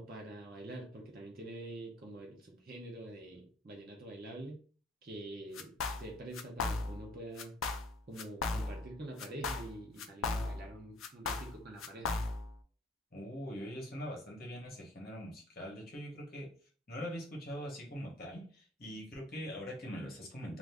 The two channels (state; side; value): normal; both; correlation 0.58